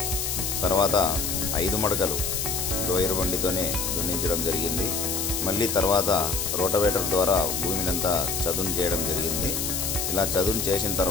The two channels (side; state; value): left; noise; hiss, 1 dB below the sound